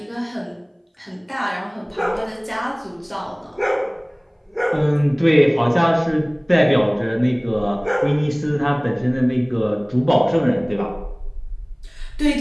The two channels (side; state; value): both; identical; correlation 1.00